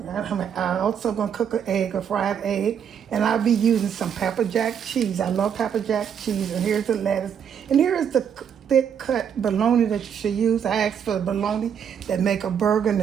I'm also gonna cook an egg, a fried egg, and I'll be using some pepper jack cheese. I love pepper jack cheese, and here's the lettuce, and here is the thick cut bologna that you should use. I asked for the bologna that make a burger in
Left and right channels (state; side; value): quieter; left; 8.0 dB